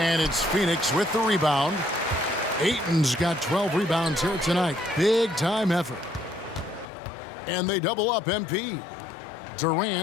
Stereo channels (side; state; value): right; drops out; at 6.9 s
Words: it's Phoenix with the rebound. Ayton's got 12 rebounds here tonight. Big time effort. And they double up MP.